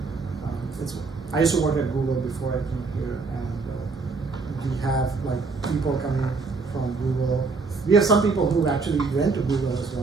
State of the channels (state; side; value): quieter; left; 4.3 dB